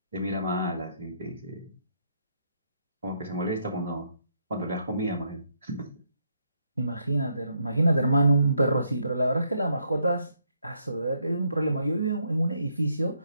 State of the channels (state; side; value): inverted; both; correlation -0.75